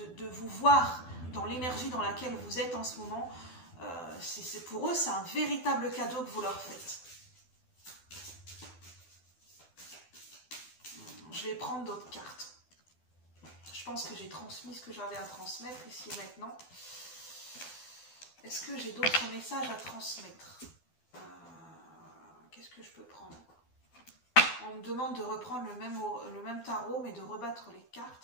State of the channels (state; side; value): late; right; 12 ms